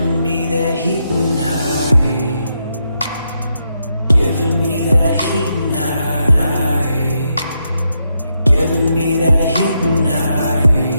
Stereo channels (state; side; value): inverted; both; correlation -0.82